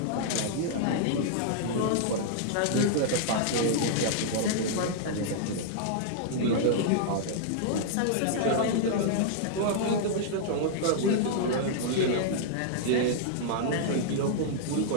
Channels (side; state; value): both; different; correlation -0.01